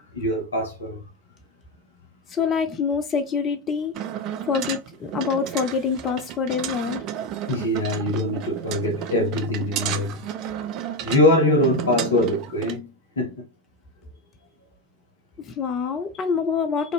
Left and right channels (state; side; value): normal; both; correlation 0.14